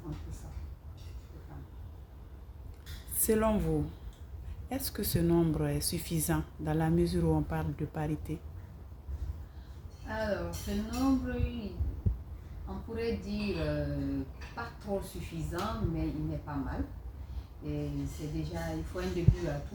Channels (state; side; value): identical; both; correlation 1.00